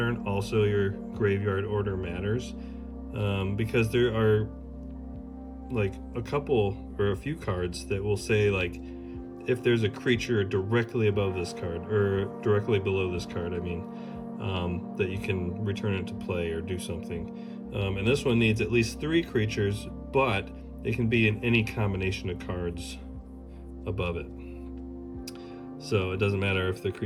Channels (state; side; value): identical; both; correlation 1.00